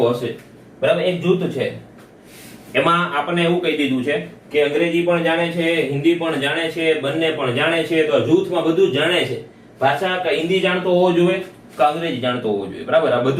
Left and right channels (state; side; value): identical; both; correlation 1.00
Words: હશે? બરાબર. એક જૂથ છે એમાં આપણને એવું કહી દીધું છે કે અંગ્રેજી પણ જાણે છે, હિન્દી પણ જાણે છે, બંને પણ જાણે છે. તો જૂથમાં બધું જ જાણે છે. ભાષા કે હિન્દી જાણતો હોવો જોઈએ કે અંગ્રેજી જાણતો હોવો જોઈએ. બરાબર. આ